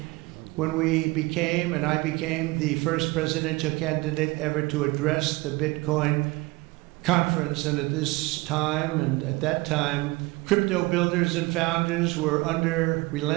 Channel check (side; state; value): left; quieter; 23.0 dB